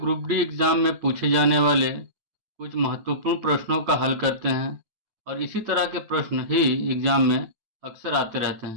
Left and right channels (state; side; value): late; left; 8.8 ms